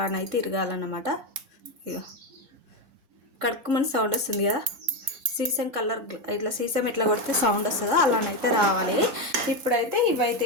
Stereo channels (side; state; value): left; late; 3.7 ms